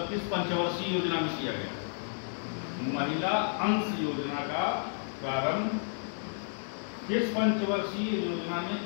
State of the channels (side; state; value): right; silent; digital silence